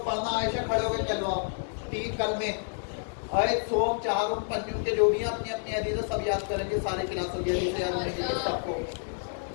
پڑھنا عائشہ کھڑے ہو کے چلو آپ 3 کلمے آیت سوم چہارم پنجم کے جو بھی اپنی اپنی حدیثیں سب یاد کریں گے سارے کلاسوں کی حدیثیں یاد ہونے کے لیے سب کو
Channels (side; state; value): right; silent; digital silence